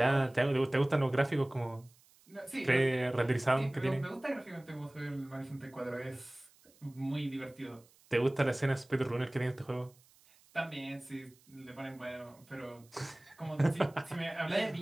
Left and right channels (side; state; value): right; noise; hiss, 29 dB below the sound